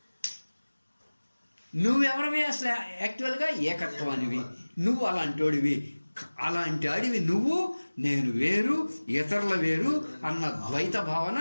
నువ్వెవరివి అసలు యాక్చువల్గా? ఏకత్వానివి. నువ్వు అలాంటి వాడివి నువ్వు. నేను వేరు, ఇతరుల వేరు అన్న ద్వైత భావన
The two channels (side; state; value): both; inverted; correlation -1.00